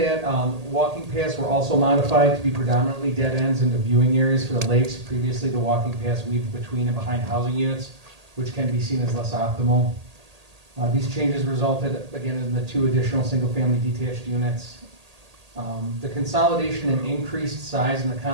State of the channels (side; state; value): left; late; 1.8 ms